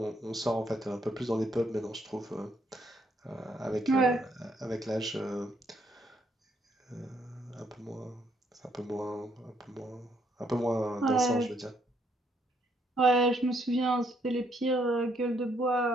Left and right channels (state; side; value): normal; both; correlation 0.72